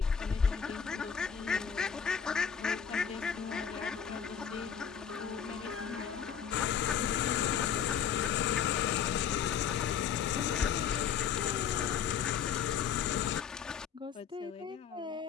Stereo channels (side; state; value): right; quieter; 7.6 dB